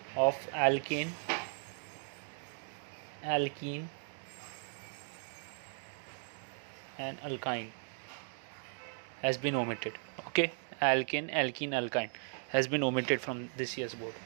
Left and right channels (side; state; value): left; silent; 53 dB below the other